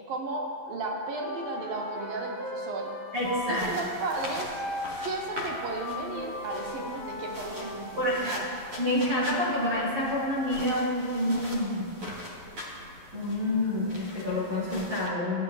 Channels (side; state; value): left; late; 11 ms